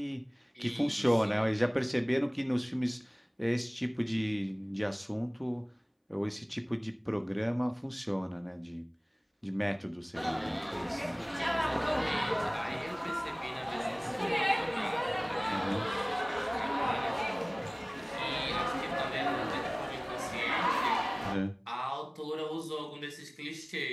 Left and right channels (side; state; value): both; identical; correlation 1.00